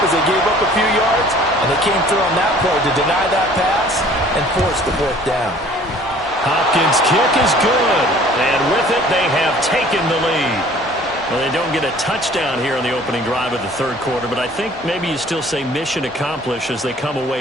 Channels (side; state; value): both; normal; correlation 0.52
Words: as they gave up a few yards, and they came through on that play to deny that pass and force the 4th down. Hopkins' kick is good, and with it, they have taken the lead. Well, they don't get a touchdown here on the opening drive of the 3rd quarter, but I think maybe you still say mission accomplished as they come